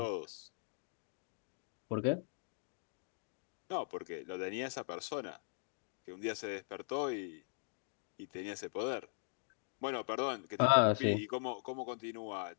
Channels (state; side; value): silent; right; digital silence